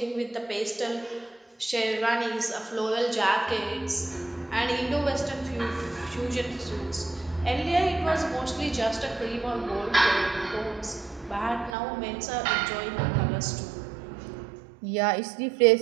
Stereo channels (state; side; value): drops out; left; at 11.8 s